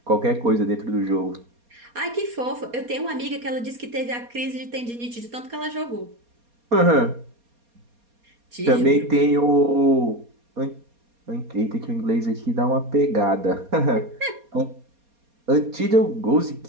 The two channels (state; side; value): late; left; 4.2 ms